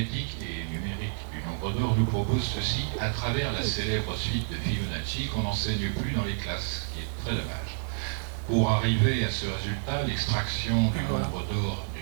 et numérique du nombre d'or nous propose ceci à travers la célèbre suite de Fibonacci qu'on n'enseigne plus dans les classes, ce qui est très dommage. Pour arriver à ce résultat, l'extraction du nombre d'or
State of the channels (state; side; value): silent; left; digital silence